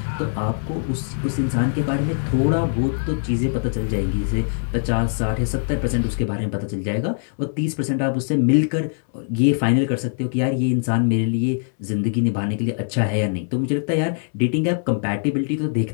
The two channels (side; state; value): right; silent; 64 dB below the other